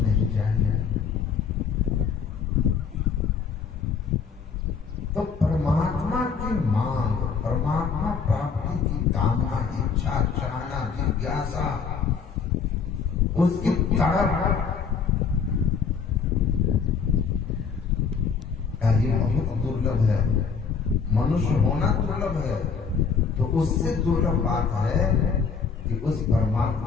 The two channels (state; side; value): quieter; right; 5.9 dB